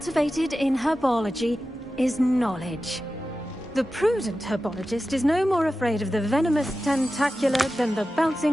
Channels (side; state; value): both; normal; correlation 0.93